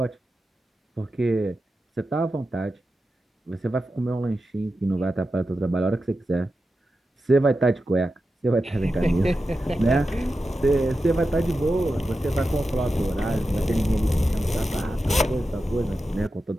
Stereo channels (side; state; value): both; normal; correlation 0.91